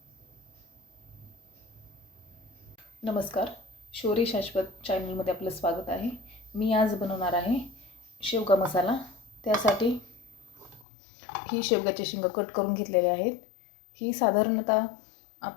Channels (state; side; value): drops out; right; at 10.9 s